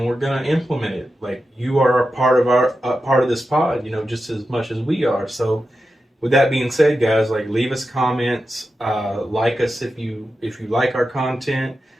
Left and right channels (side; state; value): both; normal; correlation 0.90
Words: we're gonna implement it. Like, you are a part of this pod, you know, just as much as we are. So, with that being said, guys, like, leave us comments, like us if you like our content.